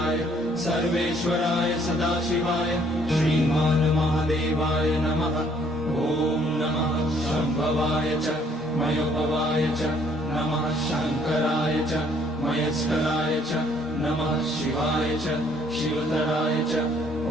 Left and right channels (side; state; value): both; normal; correlation 0.64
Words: सर्वेश्वराय सदाशिवाय श्रीमान् महादेवाय नमः। ॐ नमः शम्भवाय च मयोभवाय च नमः शङ्कराय च मयस्कराय च नमः शिवाय च शिवतराय च।